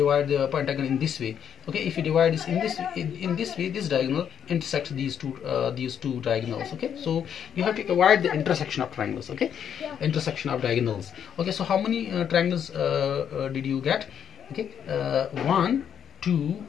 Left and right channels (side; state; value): right; quieter; 8.6 dB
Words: the pentagon in this way. Okay, if you divide this in this way, this diagonal intersects these two diagonals. Okay, so you have to avoid the intersection of triangles. Okay, intersection of diagonals. Okay, so how many triangles did you get? Okay, 1, 2,